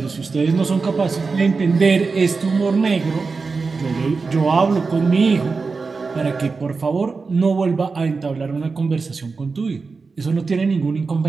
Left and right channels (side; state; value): left; quieter; 4.4 dB